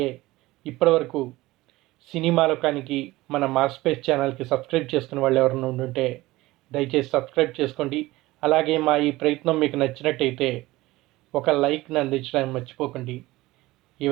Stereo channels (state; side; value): quieter; left; 18.8 dB